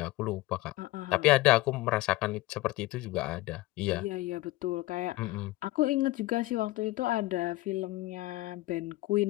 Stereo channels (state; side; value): quieter; right; 18.9 dB